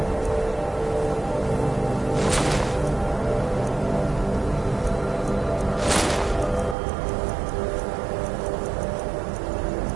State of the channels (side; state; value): left; drops out; at 6.8 s